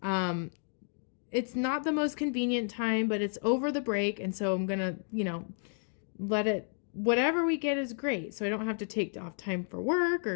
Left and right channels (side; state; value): right; silent; 57 dB below the other